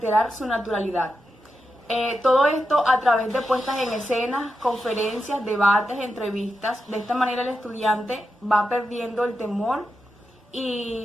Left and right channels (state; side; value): normal; both; correlation 0.88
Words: su naturalidad. Todo esto a través de puestas en escenas, conferencias, debates, entrevistas. De esta manera el estudiante va perdiendo el temor